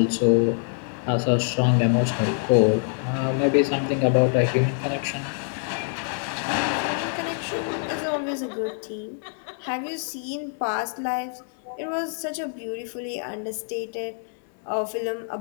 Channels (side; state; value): right; silent; 60 dB below the other